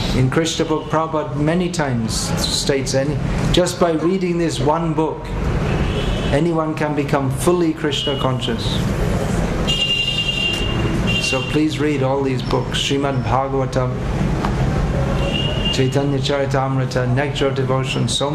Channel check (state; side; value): identical; both; correlation 1.00